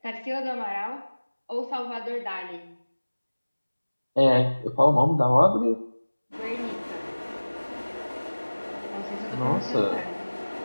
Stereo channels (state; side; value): inverted; both; correlation -1.00